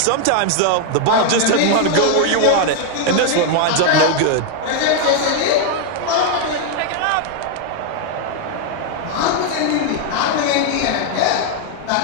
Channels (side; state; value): both; different; correlation 0.00